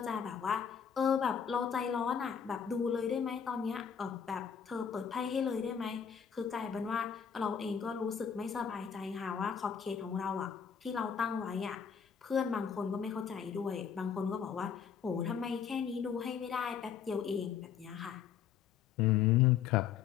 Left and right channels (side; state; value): right; quieter; 7.5 dB